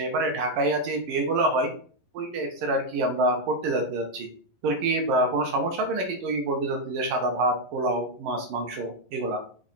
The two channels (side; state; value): left; late; 11 ms